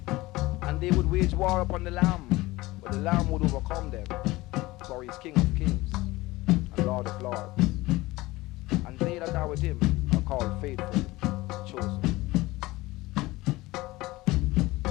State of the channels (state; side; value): quieter; right; 19.7 dB